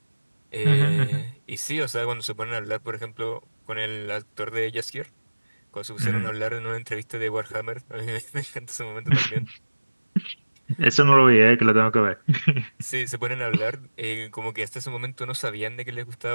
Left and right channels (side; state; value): both; inverted; correlation -1.00